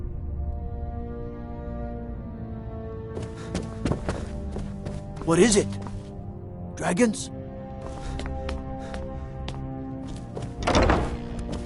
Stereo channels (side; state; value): both; identical; correlation 1.00